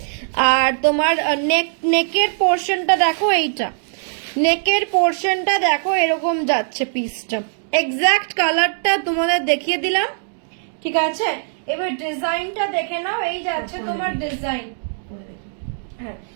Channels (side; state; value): left; silent; digital silence